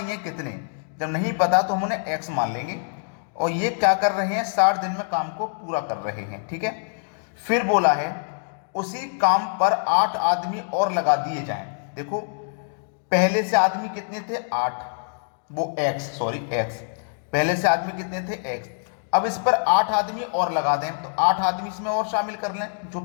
है कितने। जब नहीं पता तो हम उन्हें एक्स मान लेंगे, और ये क्या कर रहे हैं? 60 दिन में काम को पूरा कर रहे हैं। ठीक है, फिर बोला है उसी काम पर 8 आदमी और लगा दिए जाएं। देखो, पहले से आदमी कितने थे? 8। वो एक्स, पहले से आदमी कितने थे? एक्स। अब इस पर 8 आदमी और लगा दें, तो 8 आदमी इसमें और शामिल कर लें। जो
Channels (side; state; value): right; silent; digital silence